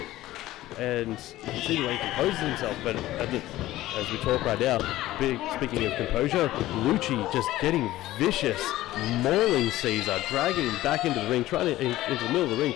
and you can see the way he composes himself. But as we talk right now, speaking of composure, Luchi just getting vicious, mauling Caesar, dragging him back into the ring, into the middle of the ring,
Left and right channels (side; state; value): right; quieter; 15.8 dB